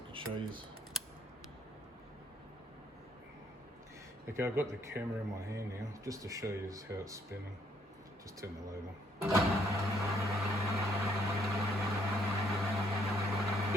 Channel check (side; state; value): both; normal; correlation 0.68